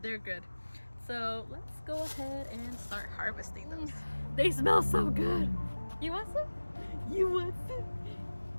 They're good. So let's go ahead and start harvesting those. They smell so good. You want some? You want some?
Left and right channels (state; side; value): inverted; both; correlation -1.00